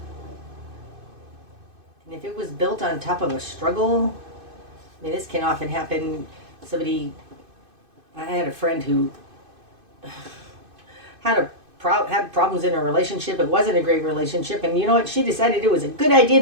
And if it was built on top of a struggle, I mean, this can often happen. I had a friend who had problems in a relationship. It wasn't a great relationship, and you know what? She decided it was a good idea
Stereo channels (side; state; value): left; late; 2.5 ms